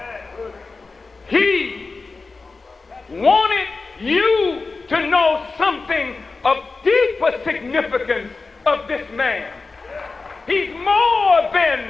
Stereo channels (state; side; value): quieter; right; 4.0 dB